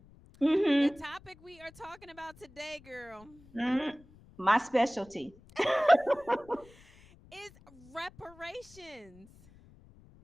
the Mhm. topic we are talking about today, girl, Mhm. My specialty. is reparations.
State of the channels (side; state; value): left; noise; rumble, 25 dB below the sound